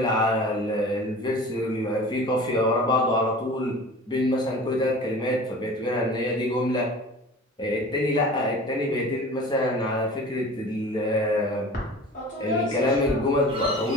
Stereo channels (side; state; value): both; normal; correlation 0.40